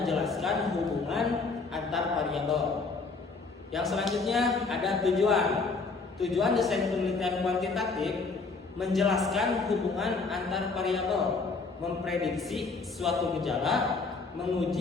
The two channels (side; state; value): right; quieter; 4.2 dB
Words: hubungan antar variabel. Yang selanjutnya ada tujuan. Tujuan desain penelitian kuantitatif menjelaskan hubungan antar variabel, memprediksi suatu gejala,